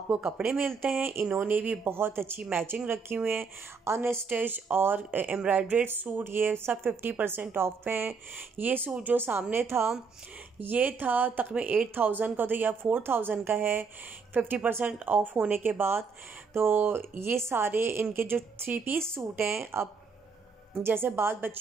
कपड़े मिलते हैं। इन्होंने भी बहुत अच्छी मैचिंग रखी हुई है, अनस्टिच और एम्ब्रॉयड्रेड सूट, ये सब 50% ऑफ पे हैं। ये सूट जो सामने था ये था तकरीबन 8000 का, तो या 4000 का है 50% ऑफ होने के बाद। तो ये सारे इनके जो 3 पीस सूट हैं, अब जैसे बाद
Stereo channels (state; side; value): quieter; left; 5.1 dB